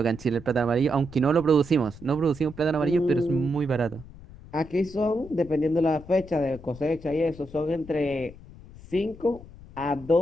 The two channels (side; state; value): left; noise; rumble, 18 dB below the sound